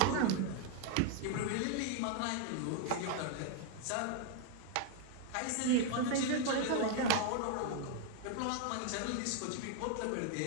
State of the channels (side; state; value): both; different; correlation 0.00